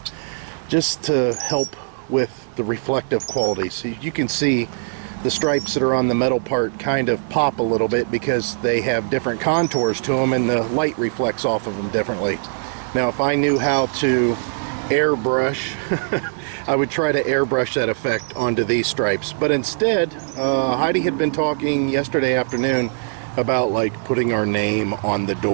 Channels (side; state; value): left; silent; 65 dB below the other